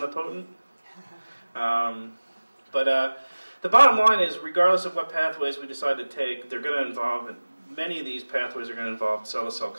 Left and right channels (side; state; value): both; inverted; correlation -1.00